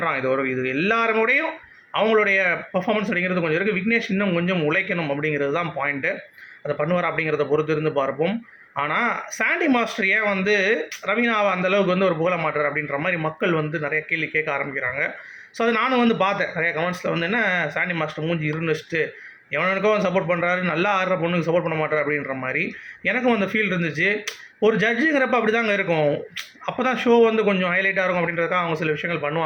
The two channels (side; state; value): both; identical; correlation 1.00